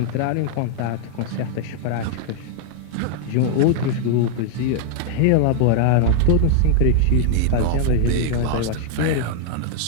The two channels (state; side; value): different; both; correlation -0.01